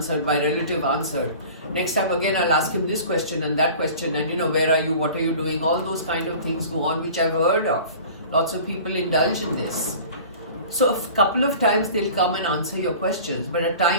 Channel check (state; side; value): inverted; both; correlation -0.42